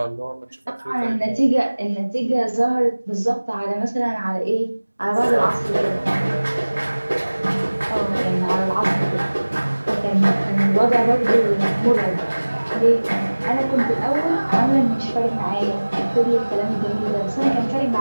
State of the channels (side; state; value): both; inverted; correlation -1.00